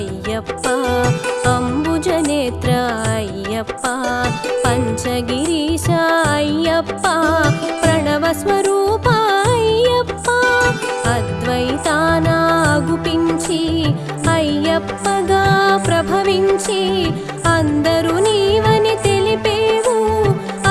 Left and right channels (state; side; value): identical; both; correlation 1.00